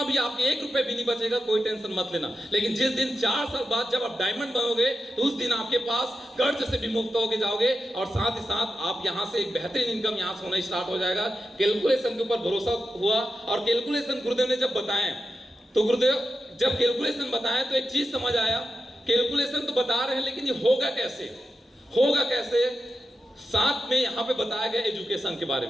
भी, आपके 1 रुपए भी नहीं बचेगा, कोई टेंशन मत लेना। लेकिन जिस दिन 4 साल बाद जब आप डायमंड बनोगे, तो उस दिन आपके पास कर्ज से भी मुक्त होके जाओगे, और साथ ही साथ आप यहाँ से एक बेहतरीन इनकम यहाँ से होना स्टार्ट हो जाएगा। कैलकुलेशन के ऊपर भरोसा हुआ, और कैलकुलेशन गुरुदेव ने जब बताए, तो गुरुदेव जब कैलकुलेशन बताया तो एक चीज समझ आया, कैलकुलेशन तो बता रहे हैं लेकिन ये होगा कैसे, होगा कैसे। साथ में यहाँ पे बताया गया एजुकेशन के बारे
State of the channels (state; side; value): normal; both; correlation 0.89